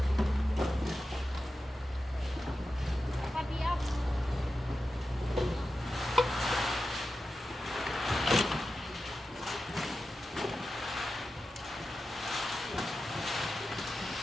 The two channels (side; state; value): both; normal; correlation 0.92